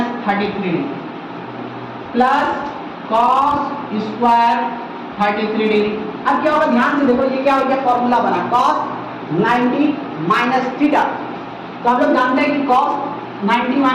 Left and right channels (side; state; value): both; identical; correlation 1.00